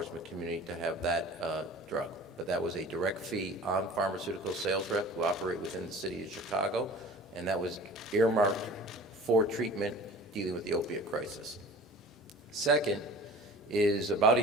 community to have that drug. But that was a direct fee on pharmaceutical sales rep who operate within the city of Chicago, and that was earmarked for treatment dealing with the opiate crisis. Second is about a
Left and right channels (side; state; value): both; normal; correlation 0.42